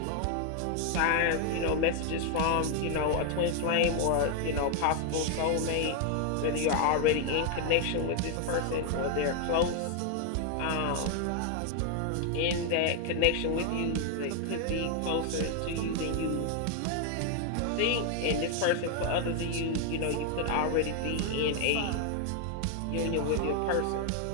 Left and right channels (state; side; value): different; both; correlation 0.00